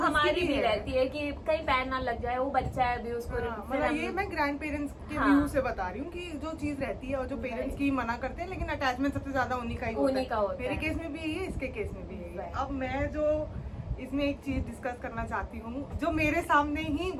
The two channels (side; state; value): both; identical; correlation 1.00